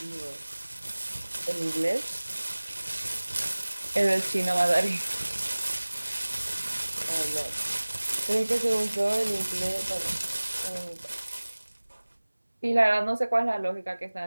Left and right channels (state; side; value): inverted; both; correlation -1.00